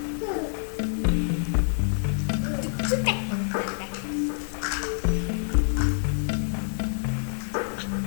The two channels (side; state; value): right; silent; digital silence